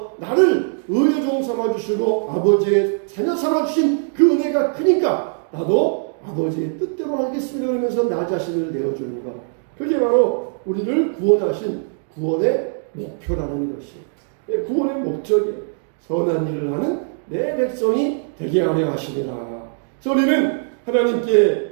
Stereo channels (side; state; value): left; silent; digital silence